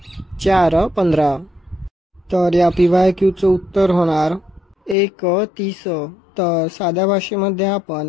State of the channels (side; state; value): right; drops out; at 5.0 s